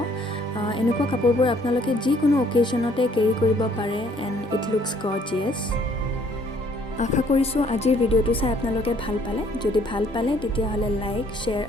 এনেকুৱা কাপোৰবোৰ আপোনালোকে যি কোনো অকেশনতে কেৰি কৰিব পাৰে and it looks gorgeous আশা কৰিছো আজিৰ ভিডিওটো চাই আপোনালোকে ভাল পালে যদি ভাল পালে তেতিয়া হলে লাইক শেয়াৰ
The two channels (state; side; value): normal; both; correlation 0.62